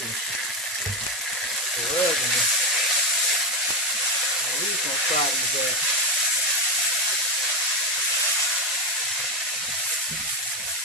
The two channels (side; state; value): both; normal; correlation 0.11